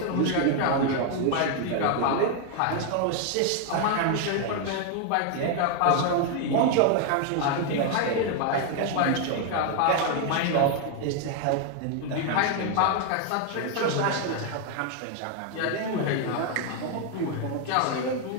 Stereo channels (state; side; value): different; both; correlation 0.00